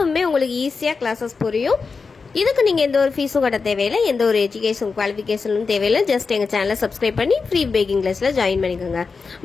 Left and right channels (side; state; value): right; quieter; 4.7 dB